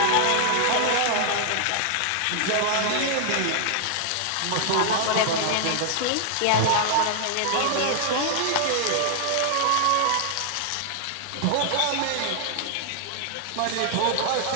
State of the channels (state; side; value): different; both; correlation 0.00